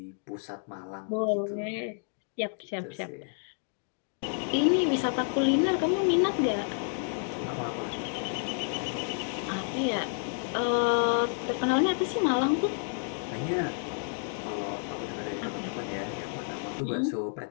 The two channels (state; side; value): silent; right; 57 dB below the other